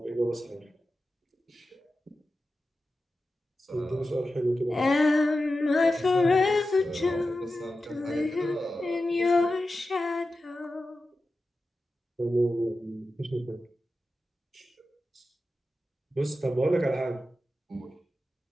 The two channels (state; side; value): normal; both; correlation 0.92